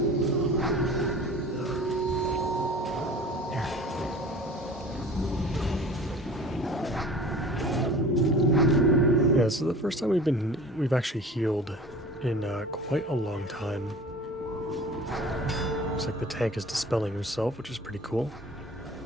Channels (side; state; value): both; normal; correlation 0.42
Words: Yeah, so the first time we've actually healed in quite a long time. Looks like the tank is dispelling himself, which is pretty cool.